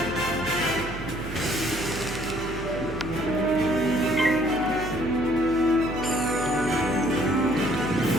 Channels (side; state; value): right; noise; hum, 11 dB below the sound